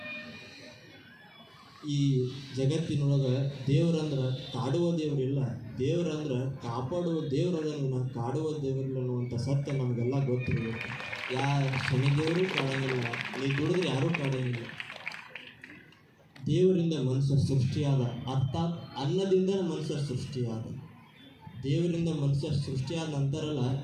ಈ ಜಗತ್ತಿನೊಳಗೆ ದೇವ್ರಂದ್ರೆ ಕಾಡುವ ದೇವರಿಲ್ಲ, ದೇವ್ರಂದ್ರೆ ಕಾಪಾಡುವ ದೇವ್ರು ಅದನ್ನು ಕಾಡುವ ದೇವರಿಲ್ಲ ಅನ್ನುವಂಥ ಸತ್ಯ ನಮಗೆಲ್ಲ ಗೊತ್ತಿರಬೇಕು. ಶನಿ ದೇವರು ಕಾಡಂಗಿಲ್ಲ, ನೀ ದುಡಿದ್ರೆ ಯಾರೂ ಕಾಡಂಗಿಲ್ಲ. ದೇವರಿಂದ ಮನುಷ್ಯ ಸೃಷ್ಟಿಯಾದ, ಅರ್ಥಾತ್ ಅನ್ನದಿಂದ ಮನುಷ್ಯ ಸೃಷ್ಟಿಯಾದ. ದೇವರಿಂದ ಮನುಷ್ಯ ಸೃಷ್ಟಿಯಾದ ನಂತರಲ್ಲ,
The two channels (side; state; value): both; identical; correlation 1.00